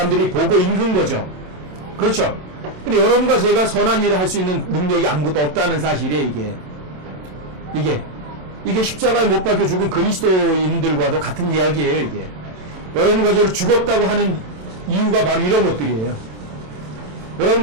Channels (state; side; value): late; left; 27 ms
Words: 보고 읽은 거죠. 그렇죠? 근데 여러분과 제가 선한 일을 할 수 있는 능력이 아무것도 없다는 사실이에요. 이게 십자가에 못 박혀 죽은 그리스도인들과도 같은 이야기예요. 이게 여러분과 저를 죽었다고 하는 이유가 바로 이런 것들이에요.